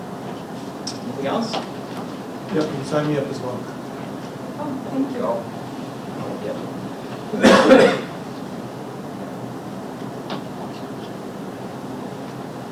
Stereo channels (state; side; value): identical; both; correlation 1.00